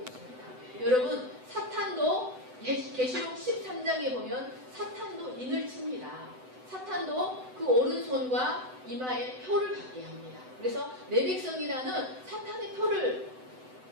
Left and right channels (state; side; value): late; left; 7.9 ms